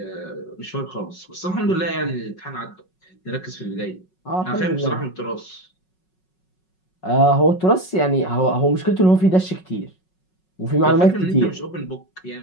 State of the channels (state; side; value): late; right; 5.4 ms